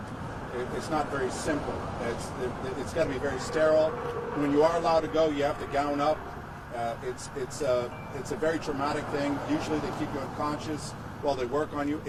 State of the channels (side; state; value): both; identical; correlation 1.00